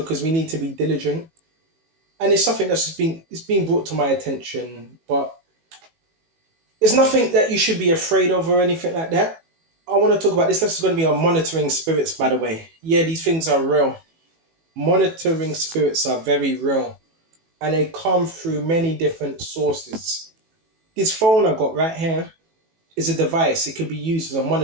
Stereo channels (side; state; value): left; late; 18 ms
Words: we need to be diligent, and it's something that's it's been brought to my attention. But it's nothing that you should be afraid of or anything like that. I want to talk about this. This is going to be on monitoring spirits, by the way. Yeah, these things are real. Monitoring spirits are very real, and they come through many different sources. This phone I got right here is a device. It could be used as a